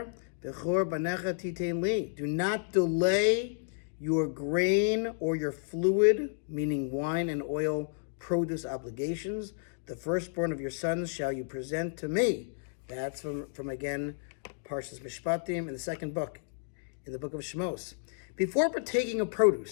bechor banecha titein li. Do not delay your grain or your fluid, meaning wine and oil, produce obligations. The firstborn of your sons shall you present to me. That's from again, Parshas Mishpatim in the second book, in the book of Shmos. Before partaking of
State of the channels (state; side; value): silent; right; digital silence